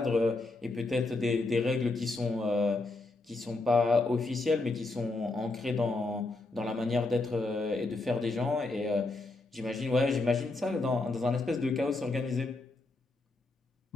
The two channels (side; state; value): right; quieter; 3.2 dB